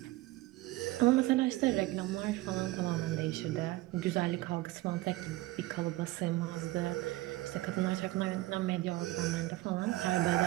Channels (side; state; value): left; quieter; 18.5 dB